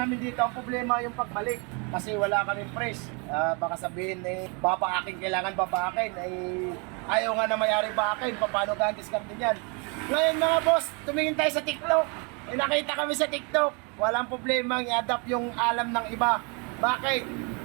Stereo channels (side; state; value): left; quieter; 33.5 dB